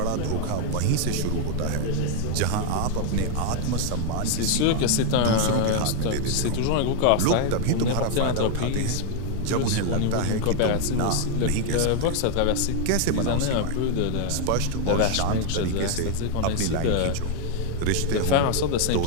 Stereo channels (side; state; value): both; different; correlation 0.00